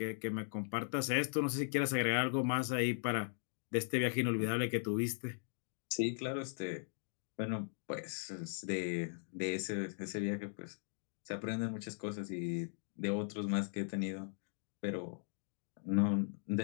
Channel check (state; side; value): silent; right; digital silence